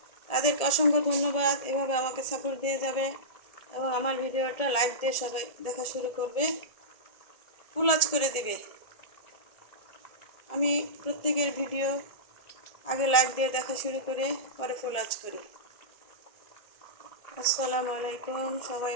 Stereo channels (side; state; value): right; late; 1.7 ms